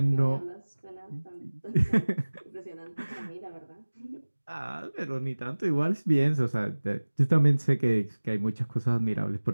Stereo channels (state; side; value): inverted; both; correlation -1.00